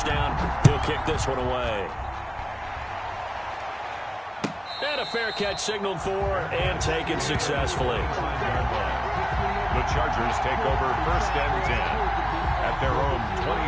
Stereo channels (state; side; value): identical; both; correlation 1.00